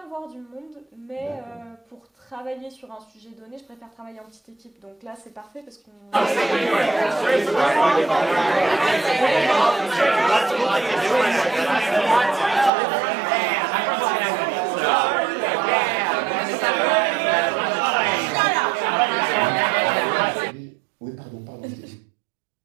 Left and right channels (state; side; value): drops out; left; at 12.7 s